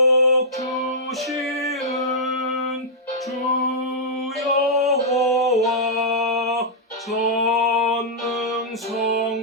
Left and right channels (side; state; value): both; normal; correlation -0.10